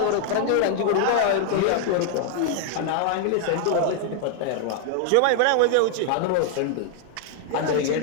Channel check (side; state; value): both; different; correlation 0.00